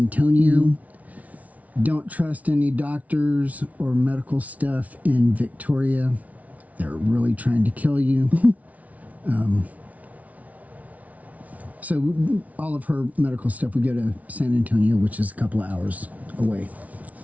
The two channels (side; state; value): left; late; 0.070 ms